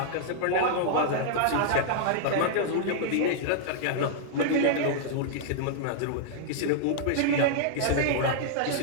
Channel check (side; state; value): both; different; correlation -0.01